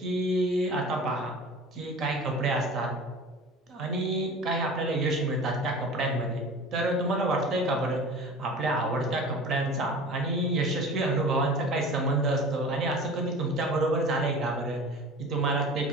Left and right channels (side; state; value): both; normal; correlation 0.38